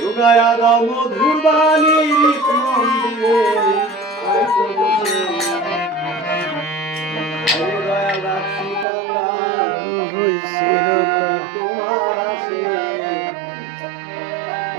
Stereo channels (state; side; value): drops out; left; at 8.8 s